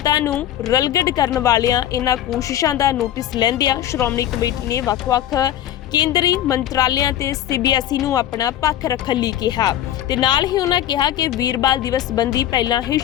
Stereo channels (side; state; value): right; quieter; 12.2 dB